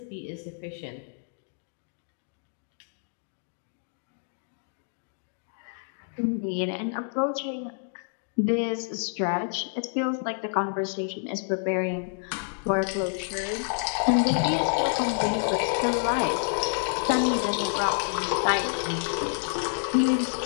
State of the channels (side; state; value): right; silent; digital silence